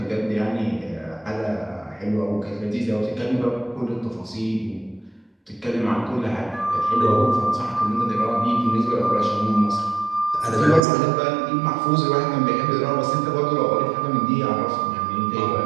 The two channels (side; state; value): left; drops out; at 10.8 s